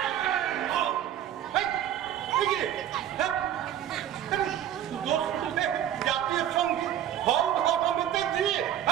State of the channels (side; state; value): left; quieter; 10.9 dB